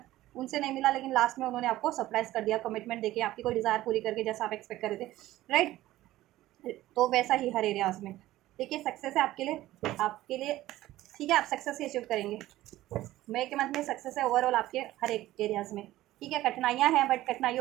उनसे नहीं मिला, लेकिन लास्ट में उन्होंने आपको सरप्राइज कर दिया, कमिटमेंट देके आपकी कोई डिज़ायर पूरी करके, जैसा आप एक्सपेक्ट कर रहे थे, राइट। तो वैसा ही हर एरियाज में, देखिए सक्सेस है आपके लिए, ठीक है। आप सक्सेस ही अचीव करेंगे, मई के मंथ में सक्सेस है ओवरऑल आपके हर एक एरियाज़ में, ठीक है। कठिनाइयाँ हैं, बट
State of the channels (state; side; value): quieter; left; 15.7 dB